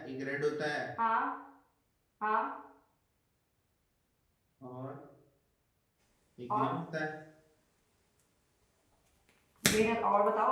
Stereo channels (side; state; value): both; identical; correlation 1.00